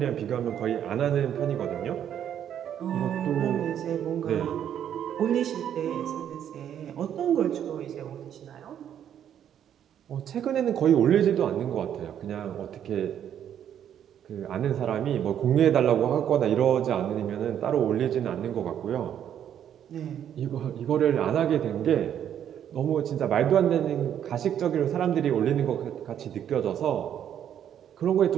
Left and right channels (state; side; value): quieter; left; 9.7 dB